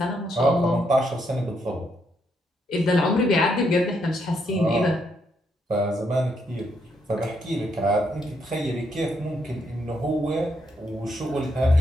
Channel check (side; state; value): both; normal; correlation 0.76